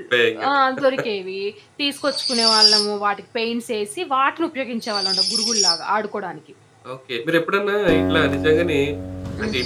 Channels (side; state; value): both; identical; correlation 1.00